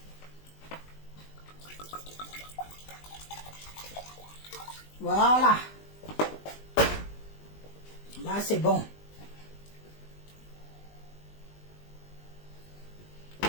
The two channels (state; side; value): late; right; 20 ms